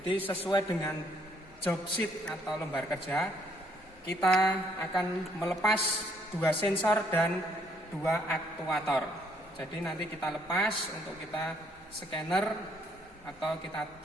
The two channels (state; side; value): normal; both; correlation 0.67